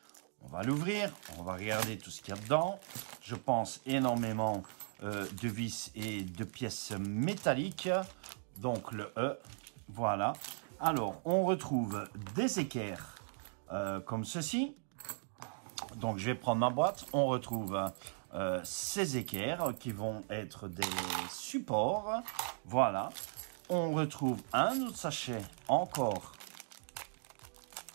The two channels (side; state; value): left; silent; digital silence